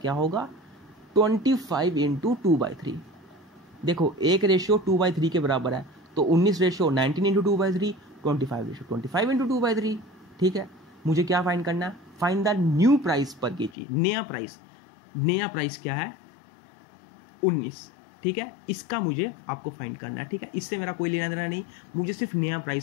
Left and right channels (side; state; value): right; drops out; at 13.8 s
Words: होगा, 25 × 2/3। देखो एक रेशियो 2/3 के बराबर है, तो 19 रेशियो 19 × 2/3, 25 रेशियो 25 × 2/3। ठीक है, मुझे क्या फाइंड करना है, फाइंड द न्यू प्राइस पर केजी। नया प्राइस क्या है, 19। ठीक है, इसका मुझे आपको फाइंड करना है। ठीक है, इससे मेरा कोई लेना देना नहीं, मुझे सिर्फ नया